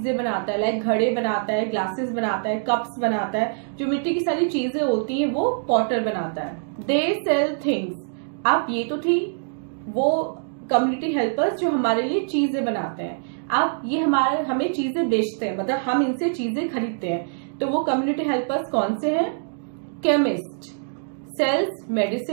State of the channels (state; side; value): silent; left; digital silence